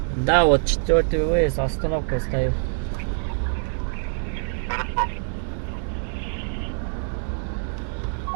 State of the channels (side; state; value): left; silent; digital silence